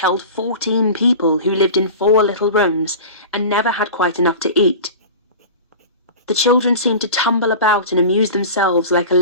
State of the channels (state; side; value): inverted; both; correlation -0.34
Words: 14 people who lived in 4 little rooms and never had quite enough to eat. The children seemed to tumble about and amuse themselves like a